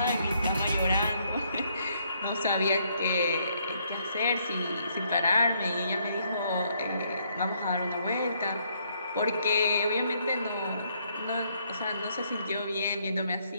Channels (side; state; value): both; inverted; correlation -0.70